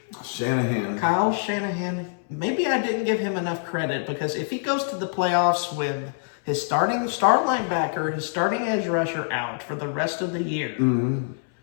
Shanahan. Kyle Shanahan. Maybe I didn't give him enough credit because if he goes to the playoffs with his starting star linebacker, his starting edge rusher out for the rest of the year, and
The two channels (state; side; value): silent; right; 62 dB below the other